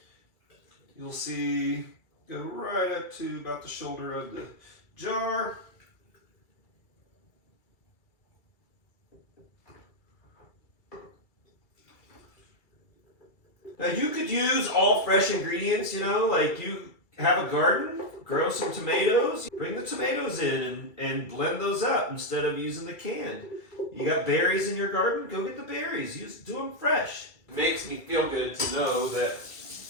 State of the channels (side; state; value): right; late; 2.3 ms